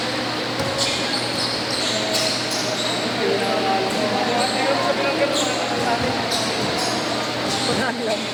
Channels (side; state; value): both; identical; correlation 1.00